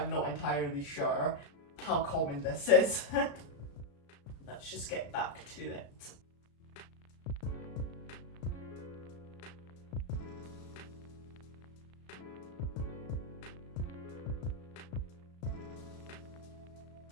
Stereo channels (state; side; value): late; right; 35 ms